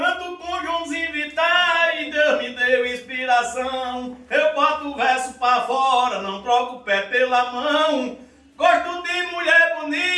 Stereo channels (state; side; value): identical; both; correlation 1.00